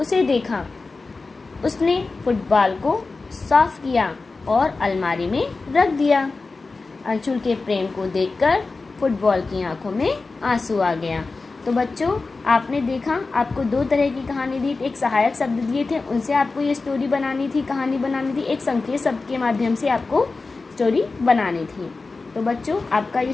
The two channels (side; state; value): right; quieter; 3.8 dB